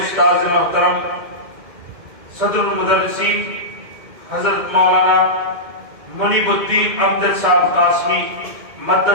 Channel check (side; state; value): left; late; 2.1 ms